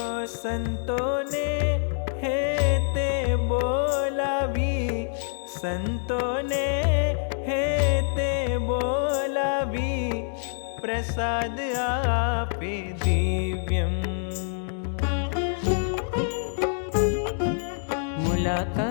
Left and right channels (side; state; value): right; silent; digital silence